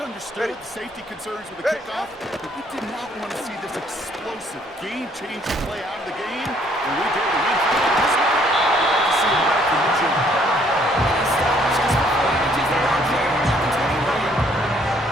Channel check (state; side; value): normal; both; correlation 0.64